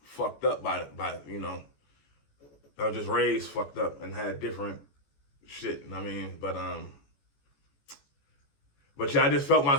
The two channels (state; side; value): late; right; 14 ms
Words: fucked up by I was just raised fucked up and had different shit. I mean, but yeah, I just felt